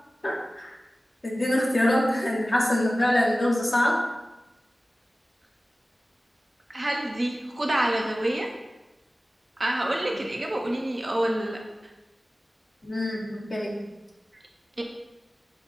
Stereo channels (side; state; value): both; normal; correlation 0.96